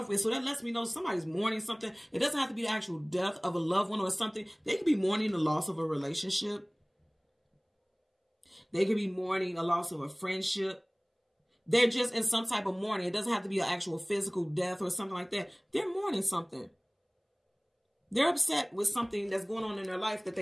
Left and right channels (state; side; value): identical; both; correlation 1.00